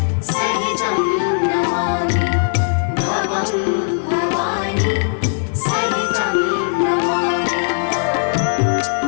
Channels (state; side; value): silent; right; 63 dB below the other